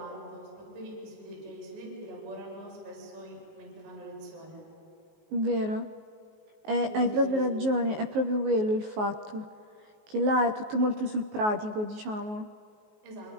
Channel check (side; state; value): left; late; 19 ms